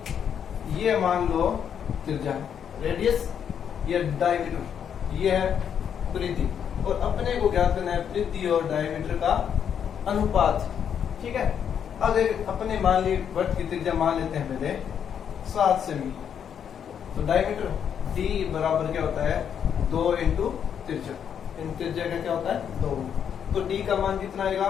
ये मान लो त्रिज्या, रेडियस, ये डायमीटर, ये है परिधि। और अपने को ज्ञात करना है परिधि और डायमीटर का अनुपात। ठीक है, अब अपने मान ली वृत्त की त्रिज्या मान लेते हैं पहले 7 सेमी। तो डायमीटर डी बराबर क्या होता है? 2 इंटू त्रिज्या। इन त्रिज्या का क्या होता है? 2। तो डी का मान कितना आएगा?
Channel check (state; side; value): quieter; right; 8.2 dB